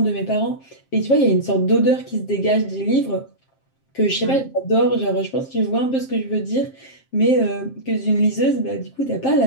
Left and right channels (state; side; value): late; right; 7.5 ms